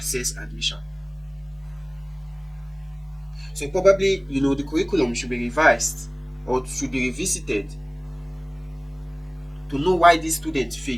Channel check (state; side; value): identical; both; correlation 1.00